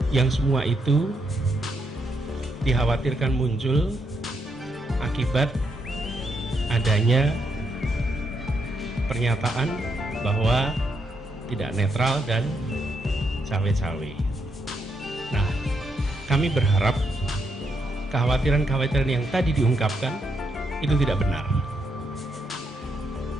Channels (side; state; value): both; normal; correlation 0.79